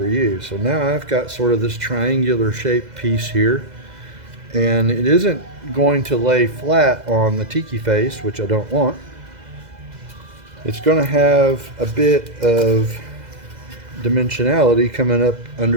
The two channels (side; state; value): left; late; 2.0 ms